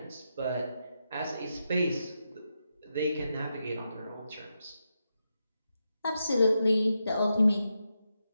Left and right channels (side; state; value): both; inverted; correlation -0.86